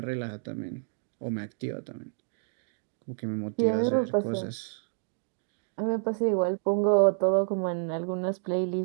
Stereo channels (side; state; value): left; silent; digital silence